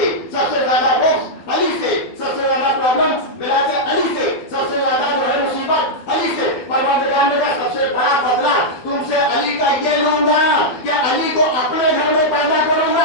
سب سے زیادہ بغض علی سے، سب سے زیادہ پرابلم ولایت علی سے، سب سے زیادہ جو ہے مصیبت علی سے۔ پروردگار نے کہا سب سے بڑا بدلہ تم سے علی کا یہ لوں گا کہ علی کو اپنے گھر میں پیدا کروں گا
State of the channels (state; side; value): late; right; 12 ms